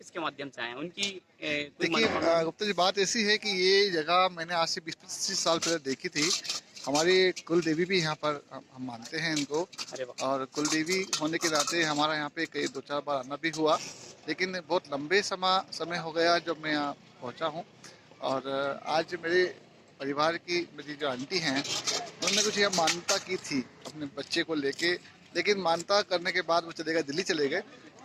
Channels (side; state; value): both; identical; correlation 1.00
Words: माध्यम से आए हैं, उनकी देखिए गुप्ता जी, बात ऐसी है कि ये जगह मैंने आज से 20-25 साल पहले देखी थी। हमारी कुल देवी भी यहाँ पर हम मानते हैं इनको, और कुल देवी होने के नाते हमारा यहाँ पे कई 2-4 बार आना भी हुआ, लेकिन बहुत लंबे समय हो गया जब मैं यहाँ पहुँचा हूँ। और आज मेरे परिवार की मेरी जो आंटी हैं, उन्होंने कुछ यहाँ मान्यता की थी अपने बच्चे को लेके, लेकिन मान्यता करने के बाद वो दिल्ली चले गए।